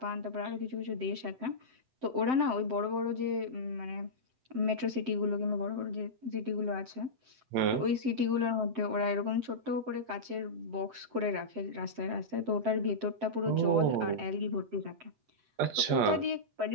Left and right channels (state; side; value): late; left; 7.7 ms